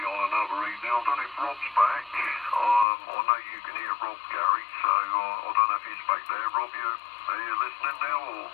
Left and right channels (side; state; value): right; drops out; at 2.9 s